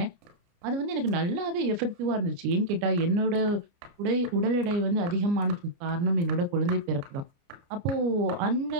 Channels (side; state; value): left; late; 29 ms